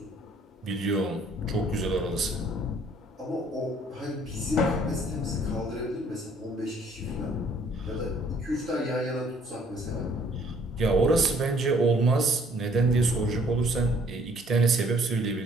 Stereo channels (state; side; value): normal; both; correlation 0.60